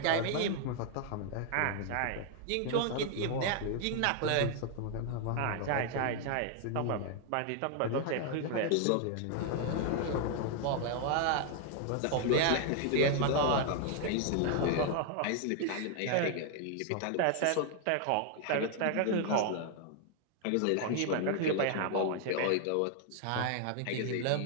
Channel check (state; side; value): different; both; correlation 0.00